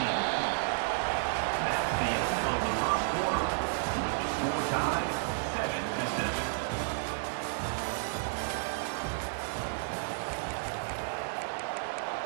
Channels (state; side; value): silent; left; digital silence